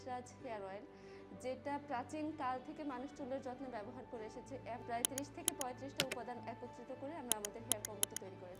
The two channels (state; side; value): identical; both; correlation 1.00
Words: হেয়ার অয়েল, যেটা প্রাচীন কাল থেকে মানুষ চুলের যত্নে ব্যবহার করে এসেছে। প্রায় 30 থেকে 35টা উপাদান একত্রিত করে আমরা আমাদের হেয়ার কম্বোটি তৈরি